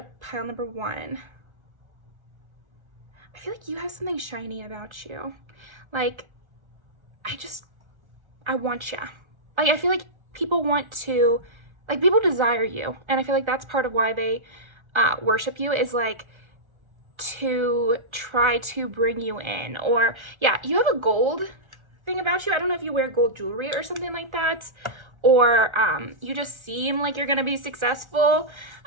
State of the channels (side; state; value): left; late; 1.4 ms